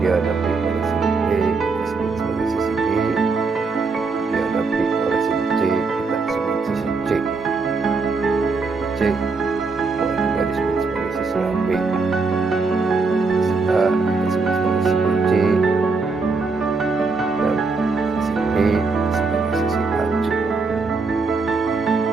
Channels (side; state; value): left; quieter; 4.2 dB